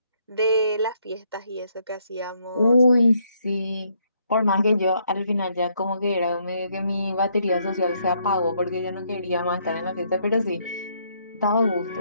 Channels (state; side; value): inverted; both; correlation -0.72